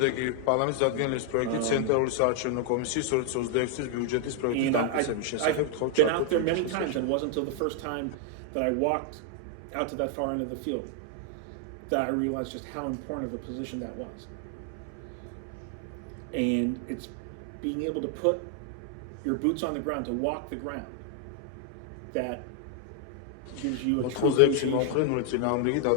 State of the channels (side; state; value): both; different; correlation 0.00